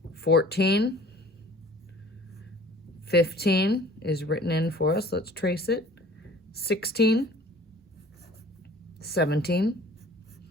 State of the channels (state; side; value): normal; both; correlation 0.48